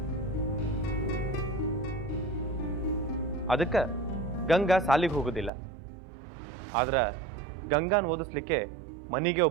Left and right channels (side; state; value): left; drops out; at 5.5 s